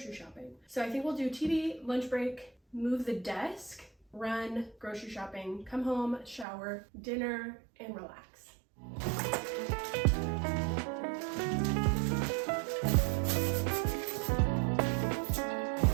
shopping. So I think we'll do TV, lunch break, move the desk, run, grocery shopping, come home, shower, dinner, and relax.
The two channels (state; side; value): drops out; left; at 6.5 s